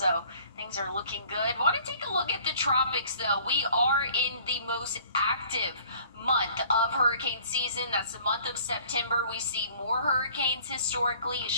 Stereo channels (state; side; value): inverted; both; correlation -0.52